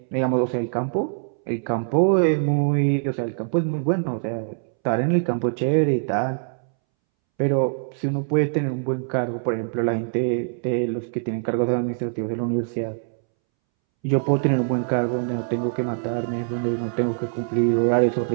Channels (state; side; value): silent; left; 63 dB below the other